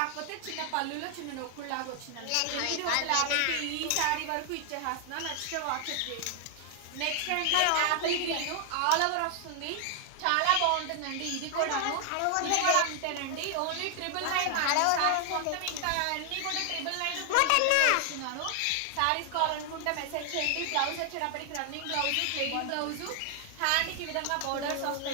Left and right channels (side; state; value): both; different; correlation 0.00